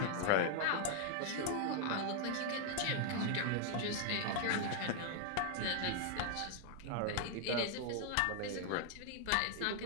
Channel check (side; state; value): both; different; correlation 0.00